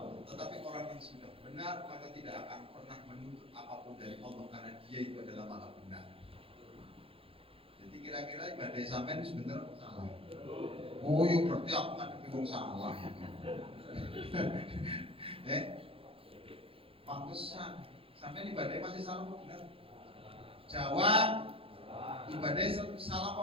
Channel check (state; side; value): late; left; 0.27 ms